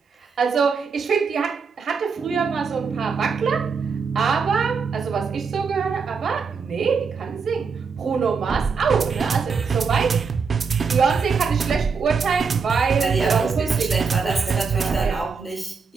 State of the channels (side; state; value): left; quieter; 5.4 dB